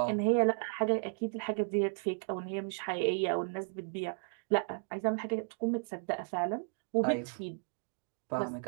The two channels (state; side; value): silent; left; 55 dB below the other